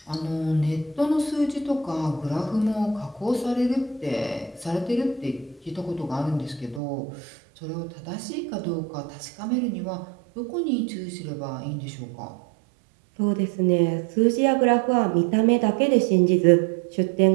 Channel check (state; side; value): drops out; left; at 6.8 s